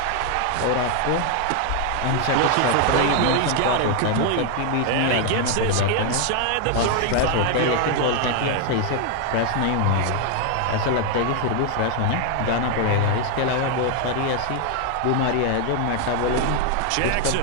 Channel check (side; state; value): both; different; correlation 0.00